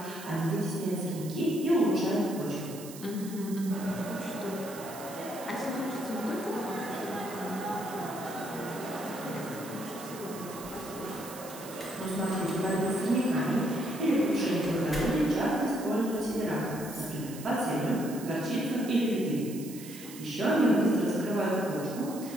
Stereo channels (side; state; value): right; noise; hiss, 15 dB below the sound